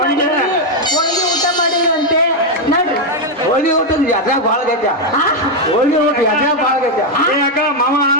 ಹೋಳಿಗೆ ಊಟ ಮಾಡಿರಂತೆ ನಡ್ರಿ ಹೋಳಿ ಊಟದ ಯಾತ್ರೆ ಭಾಳ ಗೈತ. ಹೋಳಿ ಊಟ ಯಾತ್ರೆ ಭಾಳ ಗೈತ. ಏ ಅಕ್ಕ ಮಾಮ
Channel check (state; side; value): normal; both; correlation 0.02